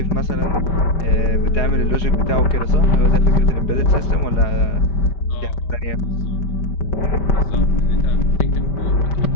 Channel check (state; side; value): late; right; 4.8 ms